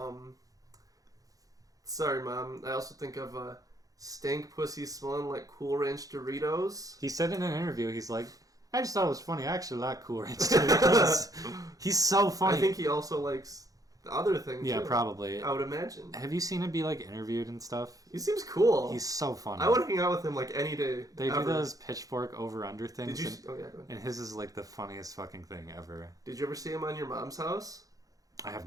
Sorry, Mom. I also think of stank pussy smelling like Cool Ranch Doritos. He said in an interview, he's like, I just thought it was funny. I actually like Cool Ranch Doritos. He's so funny. I think he also likes... the other thing, yeah, too, probably. I would imagine. Have you seen him be, like, interviewed and stuff? He seems cool. He's so funny. I would hang out with him, like, any day. They do those pitchfork over-under things. Did you... Oh, yeah, go ahead. And his is, like, the funniest fucking thing ever. Did you ever see him on your mom's house? I have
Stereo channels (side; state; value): left; late; 0.17 ms